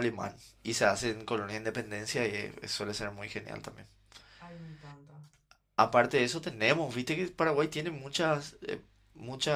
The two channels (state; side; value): identical; both; correlation 1.00